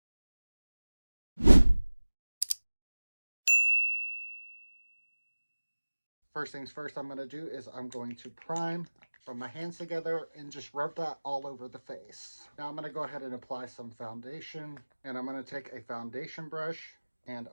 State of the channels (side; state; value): both; inverted; correlation -1.00